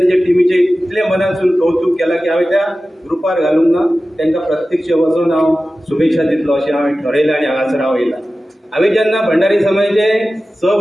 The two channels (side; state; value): both; normal; correlation 0.95